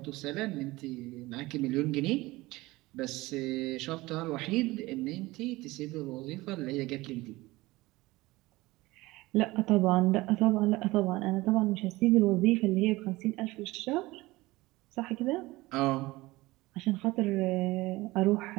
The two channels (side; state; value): left; quieter; 20.1 dB